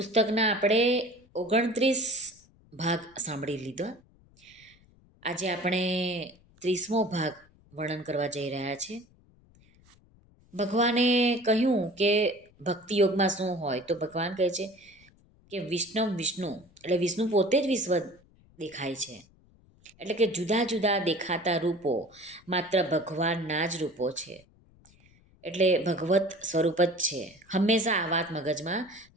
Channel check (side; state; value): left; noise; rumble, 29 dB below the sound